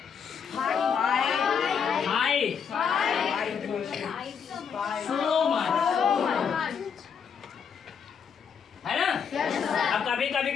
है ना। अब कभी कभी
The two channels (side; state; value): right; quieter; 6.9 dB